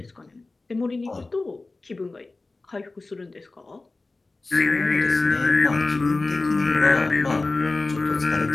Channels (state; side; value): quieter; right; 3.4 dB